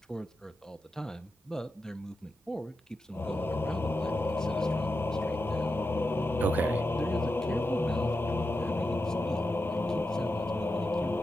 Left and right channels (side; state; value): both; normal; correlation 0.89